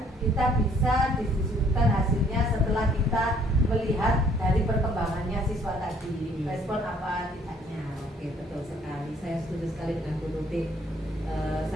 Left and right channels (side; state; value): both; normal; correlation 0.61